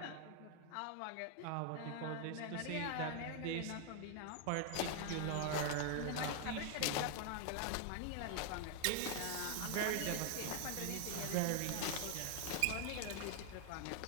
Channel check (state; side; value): different; both; correlation 0.00